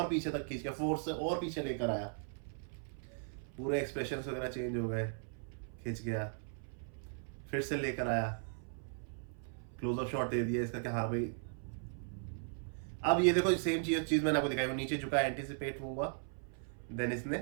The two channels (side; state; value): left; silent; 53 dB below the other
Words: पीछे तक खींच के फोर्स से और पीछे लेकर आया, पूरे एक्सप्रेशंस वगैरह चेंज हो गए, खींच गया, फिर से लेकर आया, क्लोज अप शॉट दे दिया इसका कि हाँ भाई। अब ये देखो सेम चीज मैंने आपको दिखाई, वो नीचे झुका, एंटीसिपेट हुआ, देन इसने